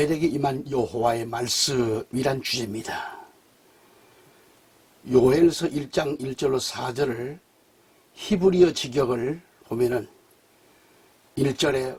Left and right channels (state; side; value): identical; both; correlation 1.00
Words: 임한 여호와의 말씀이란 주제입니다. 요엘서 1장 1절로 4절을 히브리어 직역을 보면은 1절에